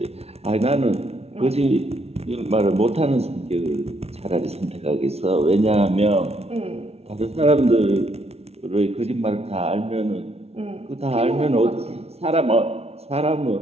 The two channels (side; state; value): left; late; 0.30 ms